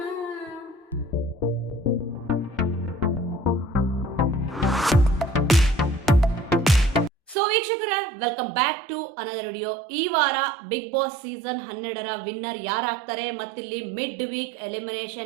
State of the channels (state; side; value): drops out; left; at 7.4 s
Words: ಸೊ ವೀಕ್ಷಕರ, welcome back to another video. ಈ ವಾರ ಬಿಗ್ ಬಾಸ್ ಸೀಸನ್ 12ರ ವಿನ್ನರ್ ಯಾರಾಗ್ತಾರೆ, ಮತ್ತಿಲ್ಲಿ ಮಿಡ್ ವೀಕ್